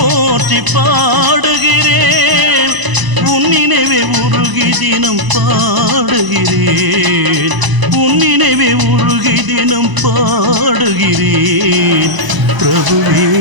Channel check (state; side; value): late; left; 1.0 ms